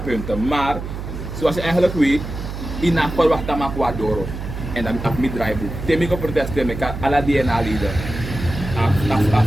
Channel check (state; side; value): noise; right; hum, 7 dB below the sound